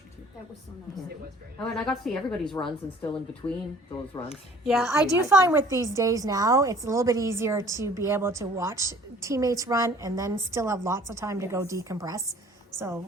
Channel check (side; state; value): both; normal; correlation 0.53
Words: too. That was so nice. It was very nice. Oh, and I got to see everybody's runs and still in between those runs. Yeah, I do find with these days now, it's a little bit easier to be able to watch teammates run and then still have lots of time to go decompress.